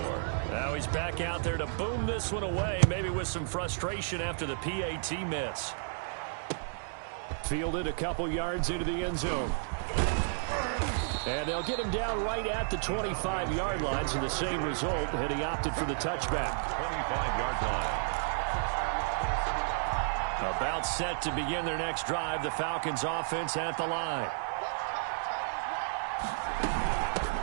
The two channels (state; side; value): silent; left; digital silence